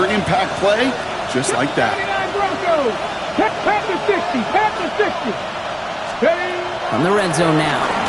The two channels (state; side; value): identical; both; correlation 1.00